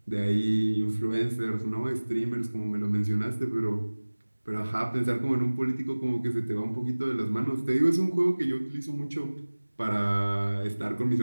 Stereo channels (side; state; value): both; inverted; correlation -1.00